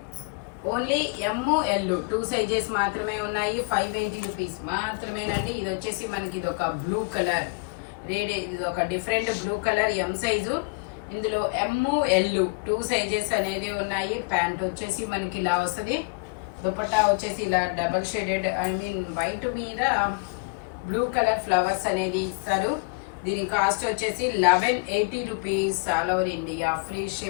ఓన్లీ ఎమ్, ఎల్ 2 సైజెస్ మాత్రమే ఉన్నాయి. 580 రూపీస్ మాత్రమేనండి. ఇది వచ్చేసి మనకి ఇది ఒక బ్లూ కలర్. ఇది ఒక different blue colour M size. ఇందులో ఎమ్ ఎల్ 2 సైజెస్ అనేది ఉన్నాయి. ప్యాంట్ వచ్చేసి మనకి ఇలా వస్తుంది. దుపట్టా వచ్చేసి ఇలా డబల్ షేడెడ్ వైట్ మీద బ్లూ కలర్ ఫ్లవర్స్ అనేది ఇస్తారు. దీని కాస్ట్ వచ్చేసి 1180 rupees. All over India free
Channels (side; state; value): right; quieter; 33.0 dB